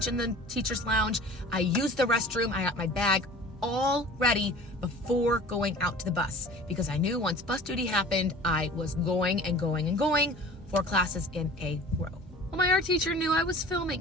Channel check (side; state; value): both; normal; correlation 0.43